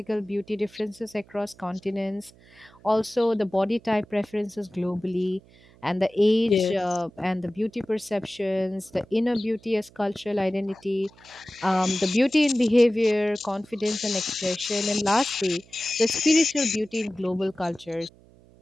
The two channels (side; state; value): right; noise; hum, 26 dB below the sound